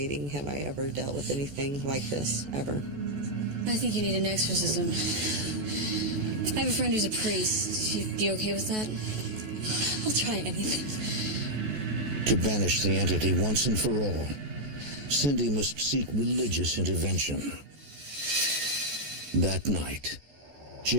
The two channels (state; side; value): late; left; 14 ms